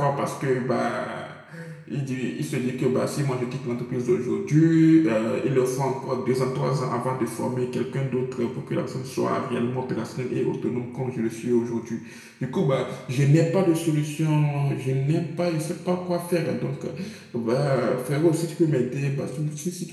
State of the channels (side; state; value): both; identical; correlation 1.00